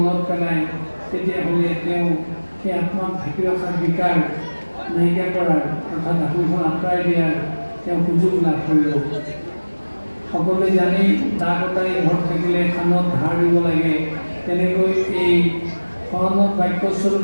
পেলায় তেতিয়াহ'লে তেওঁ সেই আত্মাক ঢাকি ৰখাৰ বিকাৰ নাইকিয়া কৰাৰ অৰ্থাৎ আত্মখন আঁতৰাই দিয়াৰ তেওঁ সুযোগ লাভ কৰিব। সকলোৱে জানি দা কটাৰী ঘৰত থাকিলে খানত ধাৰ দিব লাগে, তেনেকৈ এই শৰণত বাক্যস্বৰূপ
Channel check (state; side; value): inverted; both; correlation -1.00